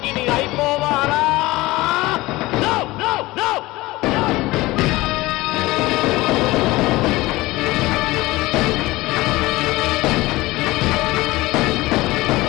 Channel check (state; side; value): quieter; right; 19.8 dB